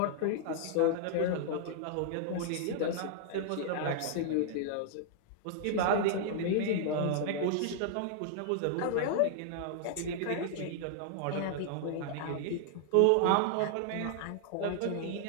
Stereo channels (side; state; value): both; different; correlation -0.01